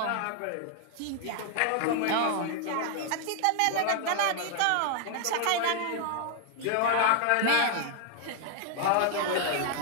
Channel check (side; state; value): both; different; correlation 0.00